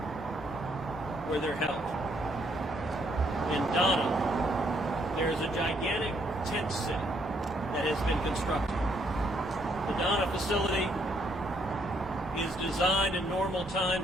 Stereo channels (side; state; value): both; normal; correlation 0.71